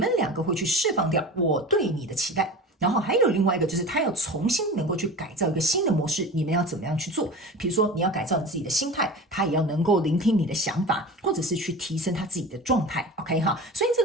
2个会去释放掉我对你的期待。然后还有另外一个就是他要重新能够去改造一个新的模式，你们要怎么样去做？比如说你要改造你自己的心态，他也要能够聆听你的想法，或者是去提升他自己的状态 OK 哈，所以这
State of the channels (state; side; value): normal; both; correlation 0.34